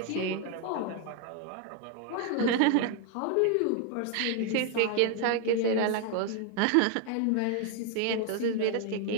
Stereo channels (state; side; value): different; both; correlation 0.00